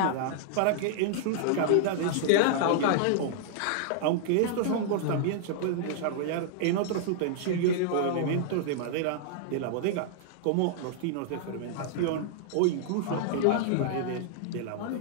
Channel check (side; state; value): both; different; correlation -0.01